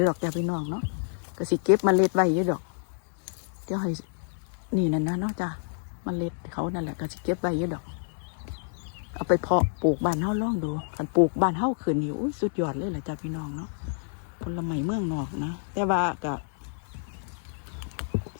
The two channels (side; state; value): right; silent; digital silence